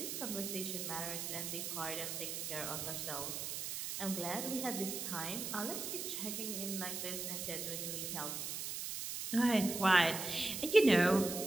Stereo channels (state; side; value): noise; right; hiss, 4 dB below the sound